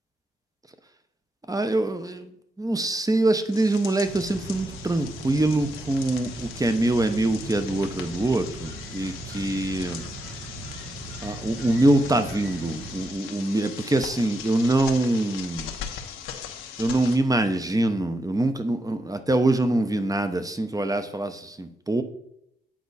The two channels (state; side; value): normal; both; correlation 0.84